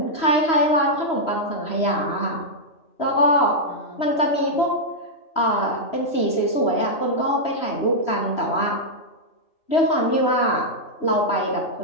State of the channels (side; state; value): right; late; 3.1 ms